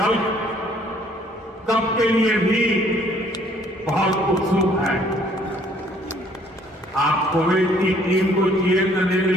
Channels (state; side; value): normal; both; correlation 0.61